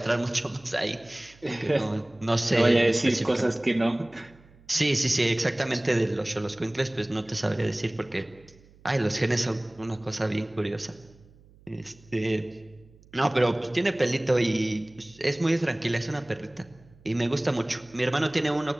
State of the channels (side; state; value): right; noise; hum, 27 dB below the sound